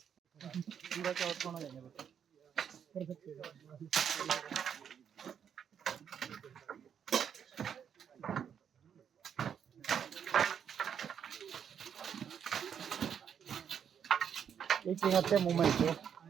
चौथ होना जाएगा कर सकते हैं। एक हफ्ते मूवमेंट है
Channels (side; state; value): left; quieter; 8.1 dB